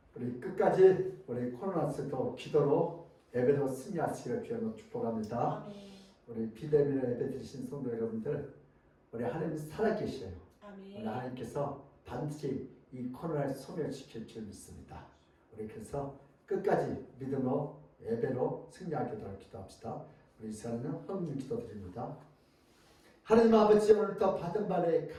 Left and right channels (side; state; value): both; identical; correlation 1.00